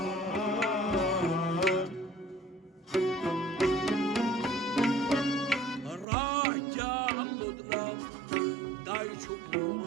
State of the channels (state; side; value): drops out; left; at 6.1 s